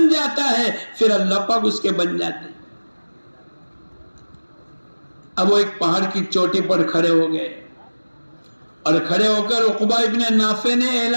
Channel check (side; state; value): both; inverted; correlation -1.00